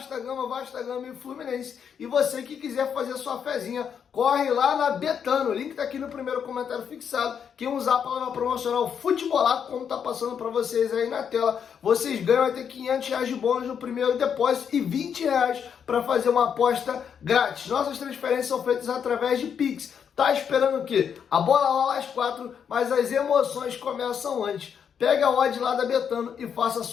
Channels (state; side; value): quieter; right; 7.6 dB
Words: Gama e Fluminense. E você que quiser fazer sua fezinha, corre lá na Betano. O link tá aqui no primeiro comentário fixado. Quem usar a palavra promocional Futebolaco, como tá passando para vocês aí na tela, vocês ganham até R$500 de bônus no primeiro depósito e R$20 para fazer uma aposta grátis. Nossas transferências são feitas através de Pix. Tá esperando o quê? A bola rola às 4, mas as emoções começam antes. Pega a odd lá da Betano e faça